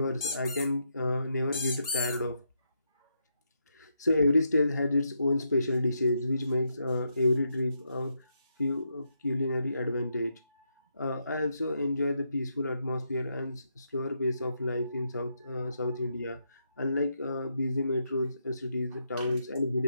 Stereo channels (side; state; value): both; inverted; correlation -0.81